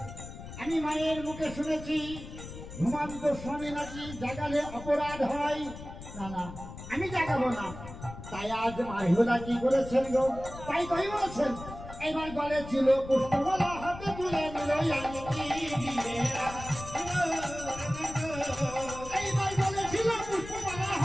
আমি মায়ের মুখে শুনেছি ঘুমান্ত স্বামী নাকি জাগালে অপরাধ হয়। না না আমি জাগাবো না। তাই আজ মাহিলা কি করেছেন গো, তাই কই বলেছেন এবার গলে ছিল পুষ্পমালা হাতে তুলে নিল এইবার গলে ছিল পুষ্পমালা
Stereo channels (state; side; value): noise; left; rumble, 12 dB below the sound